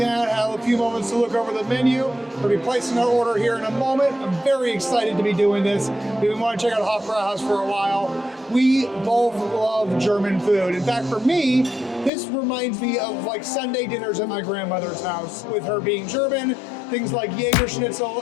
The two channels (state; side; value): drops out; right; at 12.1 s